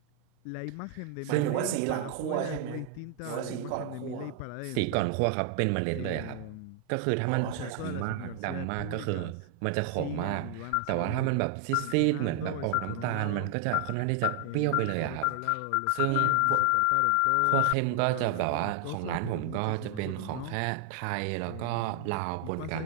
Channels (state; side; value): different; both; correlation 0.00